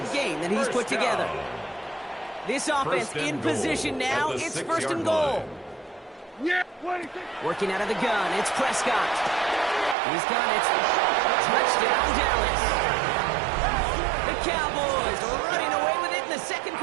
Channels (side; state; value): left; drops out; at 10.0 s